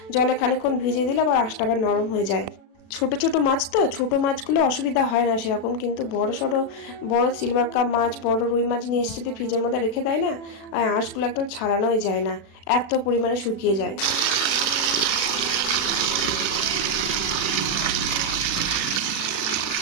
জলে খানিকক্ষণ ভিজিয়ে দিলাম, আর আঁশটা আবার নরম হয়ে যায়। ছোট ছোট মাছ তো, ছোট মাছগুলো অসুবিধা হয় না সেরকম, কিন্তু বড় সড়ো বড় সিলভার কাপ মাছ, বড় রুই মাছ নিয়ে এসে যদি ফ্রিজের মধ্যে রেখে দেয় না, আর আঁশগুলো একদম ছাড়ানোই যায় না, এত পরিমাণে শুকিয়ে যায়।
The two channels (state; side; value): late; right; 36 ms